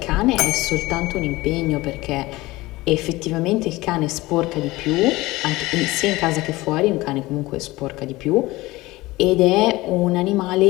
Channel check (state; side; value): quieter; right; 19.8 dB